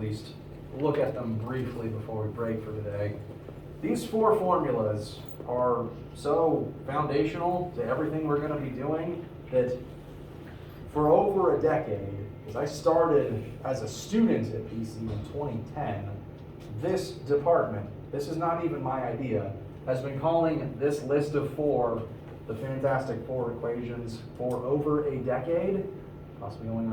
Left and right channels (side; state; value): both; identical; correlation 1.00